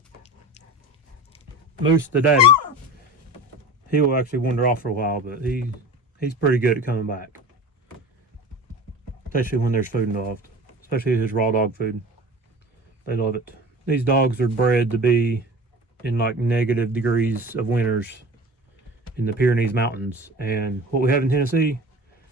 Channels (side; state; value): both; normal; correlation 0.35